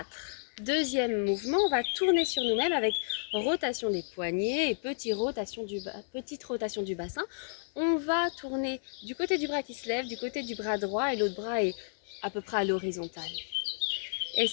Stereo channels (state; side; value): silent; right; 57 dB below the other